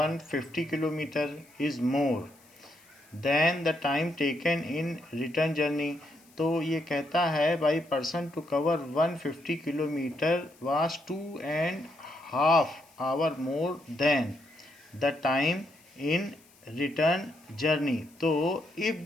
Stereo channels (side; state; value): left; noise; hiss, 28 dB below the sound